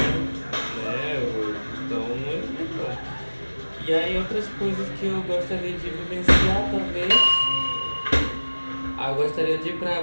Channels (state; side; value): inverted; both; correlation -1.00